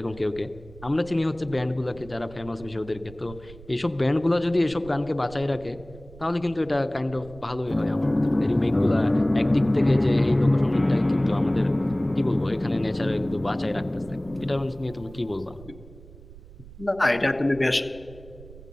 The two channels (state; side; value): noise; right; rumble, 19 dB below the sound